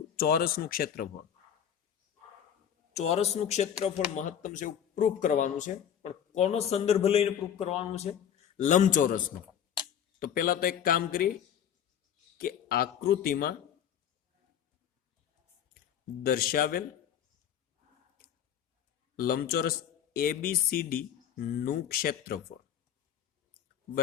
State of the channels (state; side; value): quieter; right; 9.1 dB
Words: ચોરસનું ક્ષેત્રફળ. ચોરસનું ક્ષેત્રફળ મહત્તમ છે એવું પ્રૂફ કરવાનું છે. પણ કોનો સંદર્ભ લઈને પ્રૂફ કરવાનું છે? લંબચોરસનો. તો પહેલા તો એક કામ કરીએ કે આકૃતિમાં દર્શાવેલ લંબચોરસ એબીસીડી નું ક્ષેત્રફળ